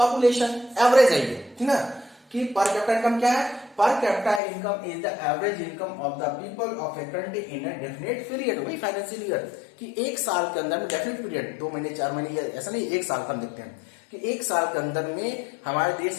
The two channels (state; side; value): drops out; right; at 4.4 s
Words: average है ये, ठीक ना, कि पर कैपिटा इनकम क्या है, per capita income is the average income of the people of a country in a definite period, वही financial year, कि एक साल के अंदर में, डेफिनेट पीरियड 2 महीने 4 महीने, ऐसा नहीं एक साल का हम देखते हैं कि एक साल के अंदर में हमारे